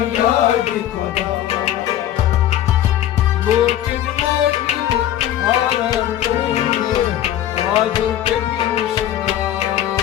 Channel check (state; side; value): quieter; right; 12.0 dB